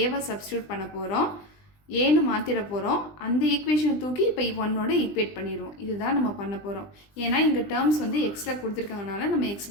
சப்ஸ்டியூட் பண்ண போகிறோம், ஏன்னு மாற்றிட போகிறோம். அந்த ஈக்குவேஷனை தூக்கி இப்போ ஒன்னோட ஈக்குவேட் பண்ணிடுவோம். இதுதான் நம்ம பண்ண போகிறோம். ஏன்னா இங்கே டேர்ம்ஸ் வந்து எக்ஸ்ட்ரா கொடுத்துருக்காங்கனால நம்ம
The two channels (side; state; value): right; late; 20 ms